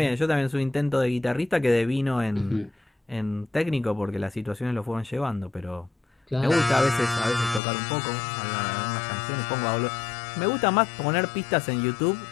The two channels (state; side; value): drops out; right; at 7.6 s